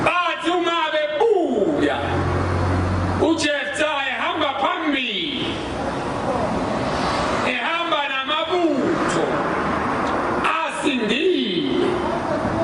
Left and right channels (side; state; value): both; identical; correlation 1.00